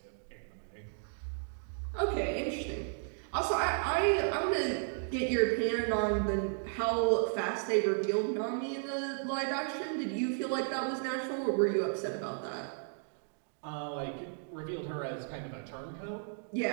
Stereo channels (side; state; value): left; silent; digital silence